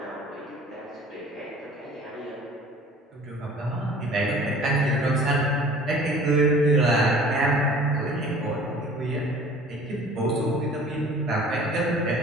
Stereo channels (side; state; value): both; normal; correlation 0.47